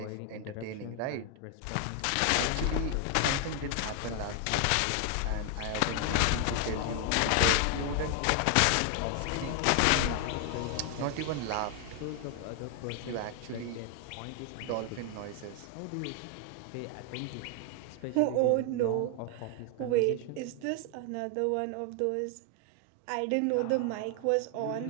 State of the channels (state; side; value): different; both; correlation 0.00